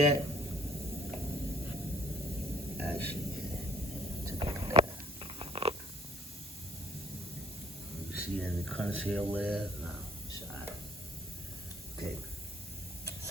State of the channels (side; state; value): both; normal; correlation 0.58